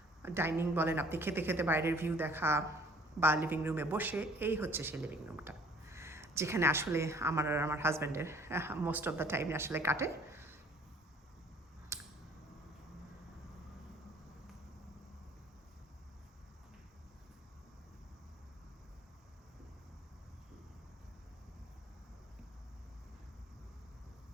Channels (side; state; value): both; normal; correlation 0.55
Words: ডাইনিং বলেন, আপনি খেতে খেতে বাইরের ভিউ দেখা বা লিভিং রুমে বসে, এই হচ্ছে সেই লিভিং রুমটা যেখানে আসলে আমার আর আমার হাজব্যান্ডের মোস্ট অফ দ্য টাইম আসলে কাটে।